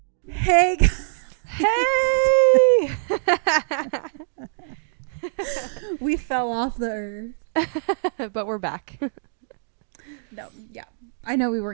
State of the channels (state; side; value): silent; left; digital silence